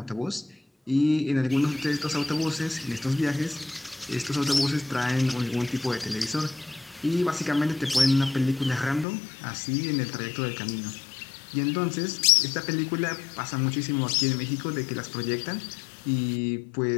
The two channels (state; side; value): drops out; right; at 9.1 s